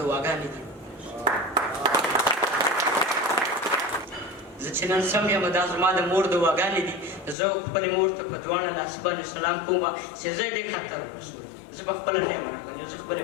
واګانې دي زه چې نن سم یم دا زما د مور د واګانې دي زه خپلې مور ته په دواړه لاسه باندې سلام کوم چې زه یې دې خطر رسول زه په خپله نه یم راغلی زه خپلې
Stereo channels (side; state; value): right; drops out; at 7.4 s